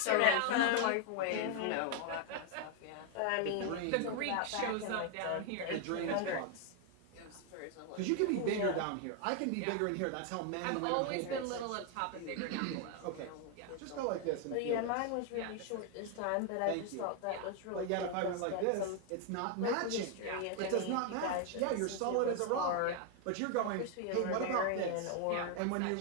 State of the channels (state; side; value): different; both; correlation 0.00